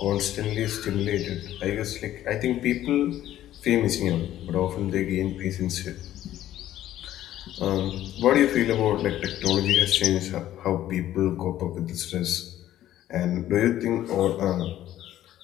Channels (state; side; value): quieter; right; 12.9 dB